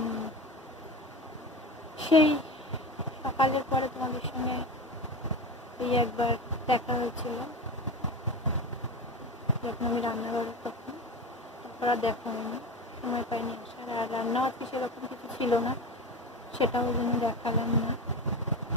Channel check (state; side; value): normal; both; correlation 0.25